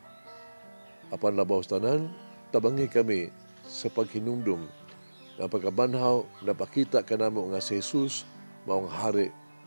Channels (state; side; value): inverted; both; correlation -1.00